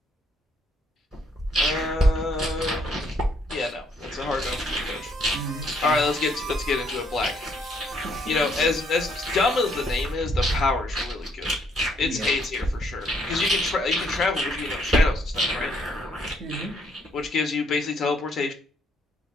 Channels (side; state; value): both; normal; correlation 0.69